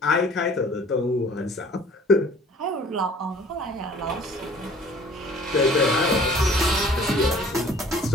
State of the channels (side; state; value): both; normal; correlation 0.51